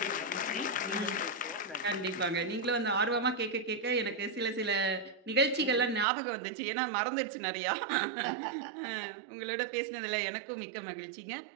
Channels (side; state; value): left; drops out; at 6.1 s